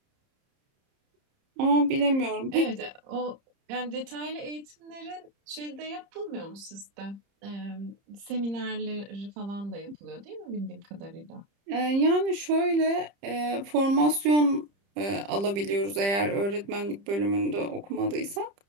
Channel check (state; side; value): late; left; 30 ms